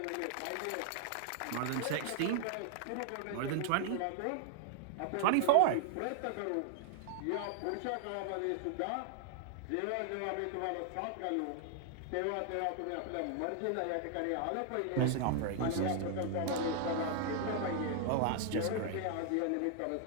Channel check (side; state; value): both; different; correlation 0.00